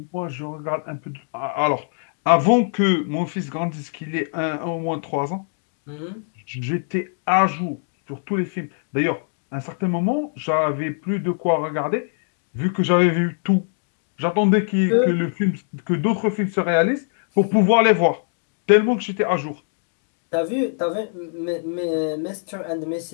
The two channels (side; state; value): right; silent; digital silence